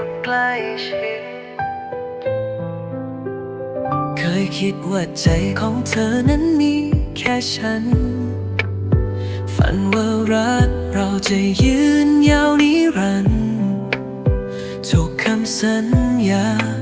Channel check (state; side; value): identical; both; correlation 1.00